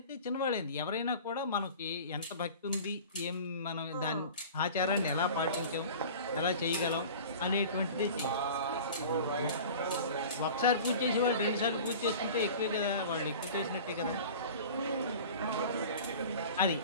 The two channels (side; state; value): both; inverted; correlation -0.39